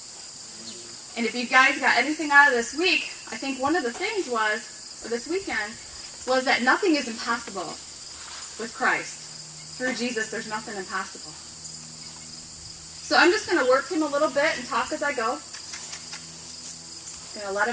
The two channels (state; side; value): identical; both; correlation 1.00